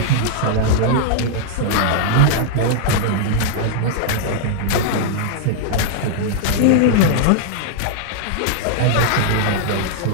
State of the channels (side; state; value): both; different; correlation -0.01